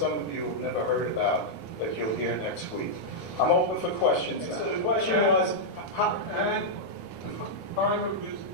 of you have never heard about that you'll hear next week. I'm open for questions. So the question was, and the time of this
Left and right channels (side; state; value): right; noise; rumble, 26 dB below the sound